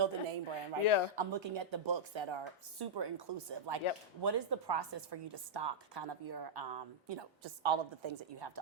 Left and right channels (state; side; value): normal; both; correlation -0.07